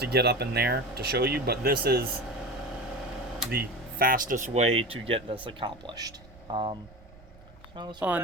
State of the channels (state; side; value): noise; right; rumble, 22 dB below the sound